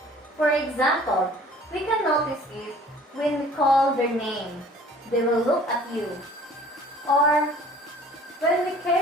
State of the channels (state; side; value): normal; both; correlation 0.50